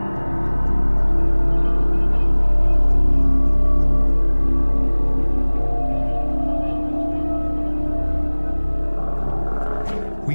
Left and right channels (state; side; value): inverted; both; correlation -1.00